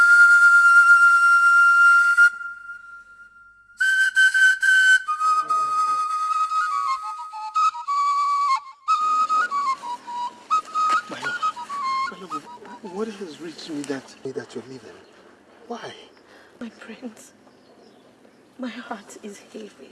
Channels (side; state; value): both; identical; correlation 1.00